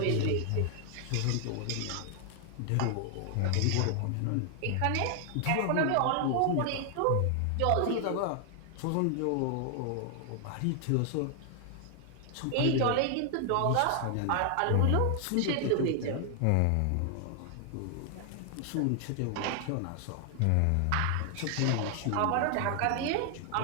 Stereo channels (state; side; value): different; both; correlation 0.00